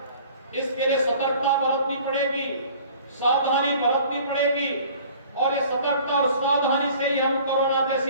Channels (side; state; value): both; inverted; correlation -0.49